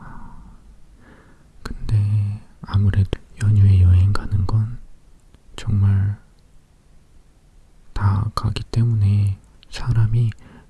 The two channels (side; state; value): both; identical; correlation 1.00